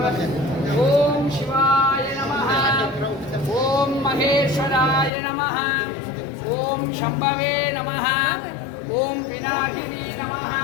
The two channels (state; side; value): drops out; right; at 5.1 s